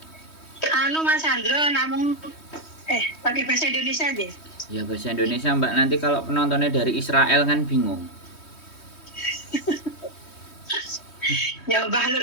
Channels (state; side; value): late; right; 3.2 ms